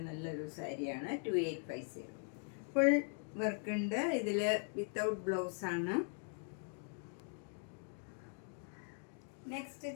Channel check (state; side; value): silent; right; 51 dB below the other